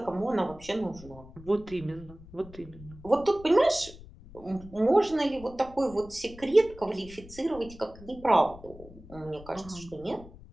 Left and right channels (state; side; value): noise; left; rumble, 18 dB below the sound